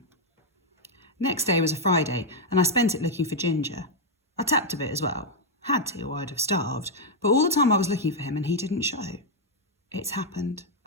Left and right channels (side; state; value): both; normal; correlation -0.01